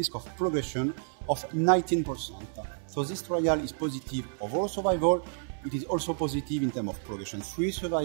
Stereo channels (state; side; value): silent; left; 58 dB below the other